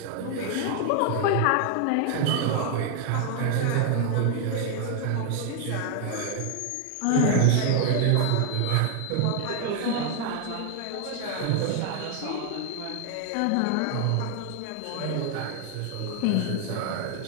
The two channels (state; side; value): different; both; correlation 0.00